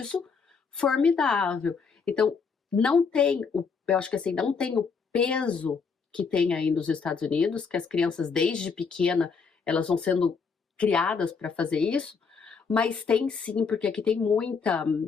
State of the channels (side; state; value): right; quieter; 5.4 dB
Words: formidável. Então, eu acho que assim, não tem o peso que tem aí nos Estados Unidos, que as crianças desde pequena, elas vão sendo criadas para fazer isso, mas tem sim, porque aqui tem muita